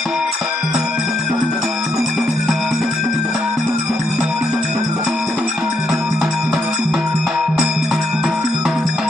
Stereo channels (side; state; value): both; normal; correlation 0.78